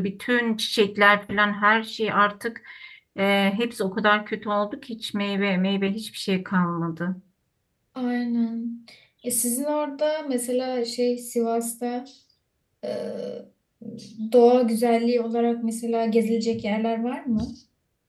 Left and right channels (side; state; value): both; identical; correlation 1.00